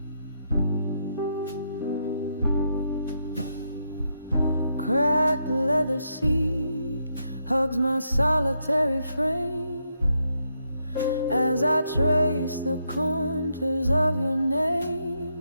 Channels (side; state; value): both; inverted; correlation -0.80